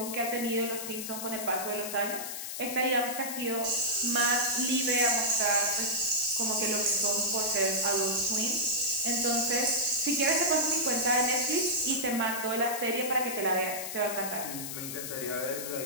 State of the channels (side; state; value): left; noise; hiss, 6 dB below the sound